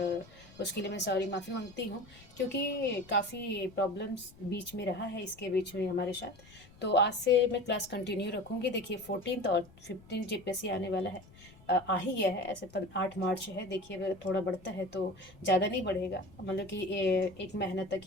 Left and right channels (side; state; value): left; noise; rumble, 23 dB below the sound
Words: उसके लिए मैं सॉरी माफ़ी मांगती हूँ, क्योंकि काफ़ी प्रॉब्लम्स बीच में रहा है इसके बीच में हमारे साथ। तो आज से मैं क्लास कंटिन्यू रखूँगी। देखिए 14 और 15 जीपीएससी आने वाला है, आ ही गया है। ऐसे 8 मार्च है। देखिए अगर थोड़ा बढ़ता है तो ज़्यादा नहीं बढ़ेगा, मतलब कि एक महीना तक